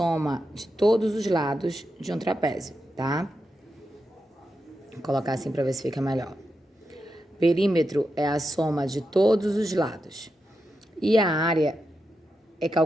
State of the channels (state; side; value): normal; both; correlation 0.87